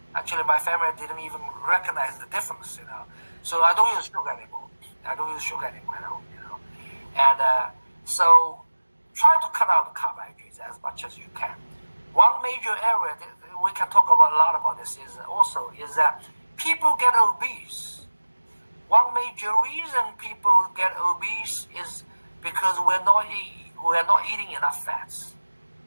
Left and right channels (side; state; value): both; inverted; correlation -1.00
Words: Actually, my family didn't even recognize the difference, So I don't use sugar anymore. I don't use sugar anymore at home, And so try to cut out the carbohydrates as much as you can. One major area that we can talk about a lot about this is that people get obese. One major reason people get obese is because we're not eating enough fats.